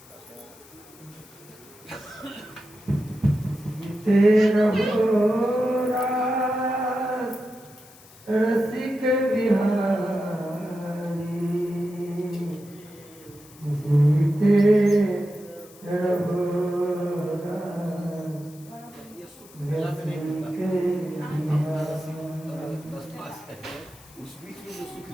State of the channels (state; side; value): noise; left; hiss, 23 dB below the sound